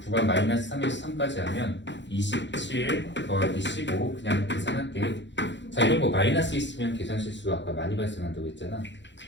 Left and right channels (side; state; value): right; late; 0.52 ms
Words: 구간 마이너스 3에서 3까지 하면 27 더하기 15 그냥 계산할게. 자, 이런 거 마이너스 있으면 계산 실수가 아까 많이 발생한다고 했잖아.